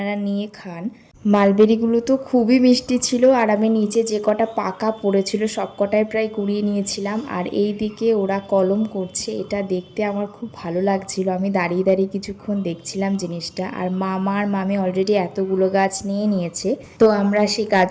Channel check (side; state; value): both; identical; correlation 1.00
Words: নিয়ে খান। মালবেরিগুলো তো খুবই মিষ্টি ছিল, আর আমি নিচে যে কটা পাকা পড়েছিল সব কটাই প্রায় কুড়িয়ে নিয়েছিলাম। আর এই দিকে ওরা কলম করছে, এটা দেখতে আমার খুব ভালো লাগছিল। আমি দাঁড়িয়ে দাঁড়িয়ে কিছুক্ষণ দেখছিলাম জিনিসটা। আর মামা আর মামি অলরেডি এতগুলো গাছ নিয়ে নিয়েছে, তো আমরা সেই